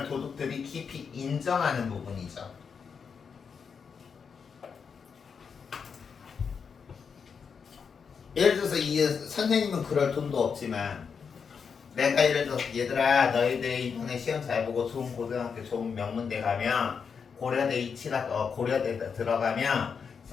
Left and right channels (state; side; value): quieter; right; 6.2 dB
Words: 도둑들이 깊이 인정하는 부분이죠. 예를 들어서 이 선생님은 그럴 돈도 없지만 내가 예를 들어서 얘들아 너희들 이번에 시험 잘 보고 좋은 고등학교 좋은 명문대 가면 고려대 고려대 들어가면